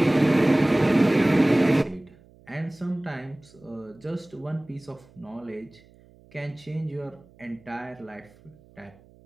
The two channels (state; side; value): noise; right; hum, 27 dB below the sound